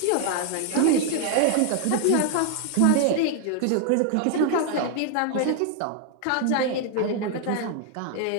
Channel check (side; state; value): both; different; correlation 0.00